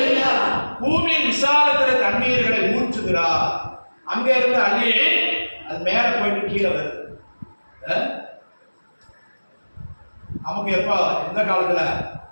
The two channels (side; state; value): both; inverted; correlation -1.00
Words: பூமியின் விசாலத்துல தண்ணீர்களை ஊற்றுகிறார். அங்க இருந்து அள்ளி அது மேல போயிட்டு கீழே வருது. நமக்கு எப்ப எந்த காலத்துல